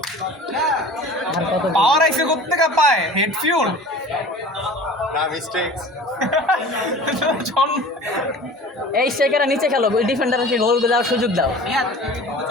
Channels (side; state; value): both; normal; correlation 0.41